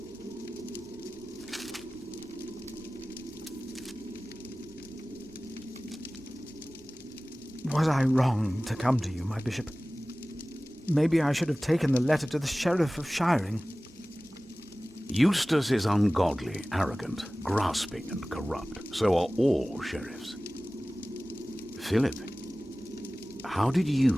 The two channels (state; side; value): normal; both; correlation 0.97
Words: Was I wrong to come to you, my bishop? Maybe I should have taken the letter to the Sheriff of Shiring. Eustace is ungodly, arrogant, grasping and corrupt. So are all sheriffs. Philip, how did